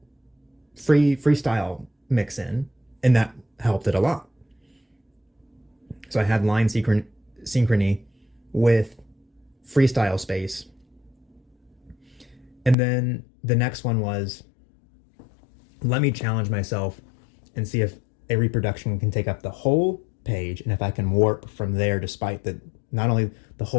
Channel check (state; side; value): drops out; right; at 12.8 s